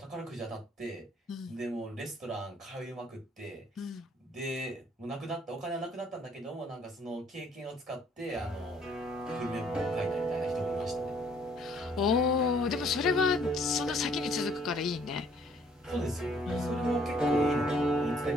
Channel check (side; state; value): both; normal; correlation 0.62